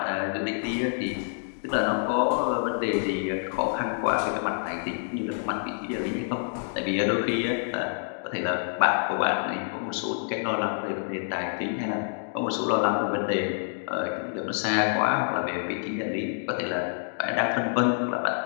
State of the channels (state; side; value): silent; right; digital silence